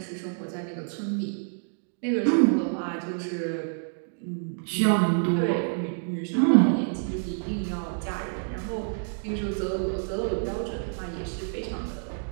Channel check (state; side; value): silent; left; 59 dB below the other